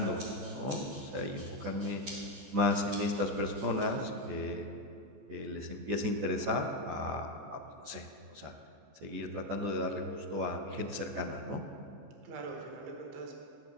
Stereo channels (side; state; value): left; late; 14 ms